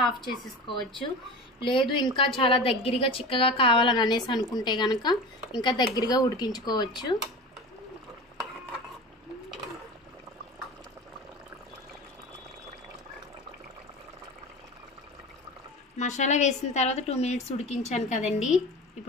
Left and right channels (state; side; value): normal; both; correlation 0.32